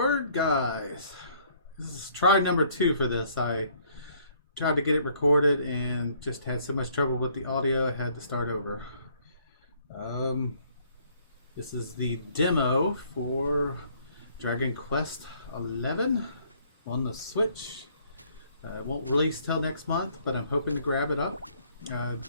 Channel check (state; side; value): inverted; both; correlation -0.63